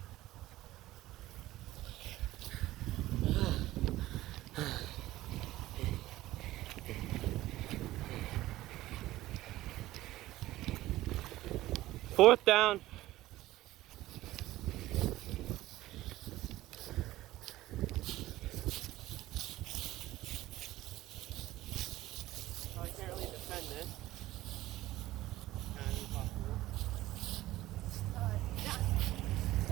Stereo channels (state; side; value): quieter; left; 16.2 dB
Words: Fourth down. I can't really defend this. Kind of impossible. Down.